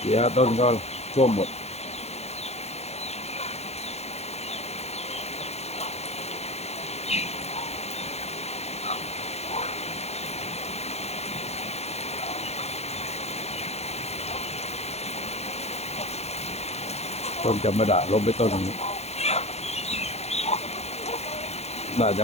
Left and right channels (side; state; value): right; late; 0.31 ms